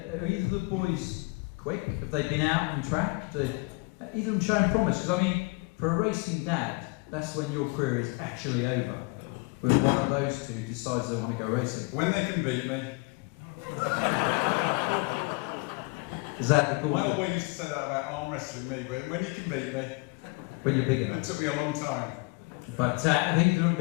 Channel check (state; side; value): quieter; right; 27.6 dB